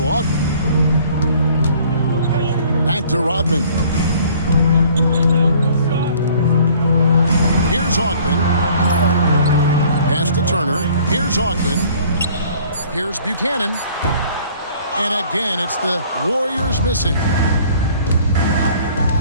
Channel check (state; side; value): inverted; both; correlation -0.54